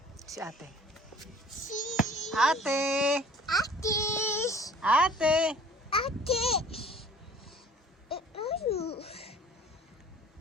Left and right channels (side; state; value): both; normal; correlation 0.50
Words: Si ate. Ate! Ate! Ate!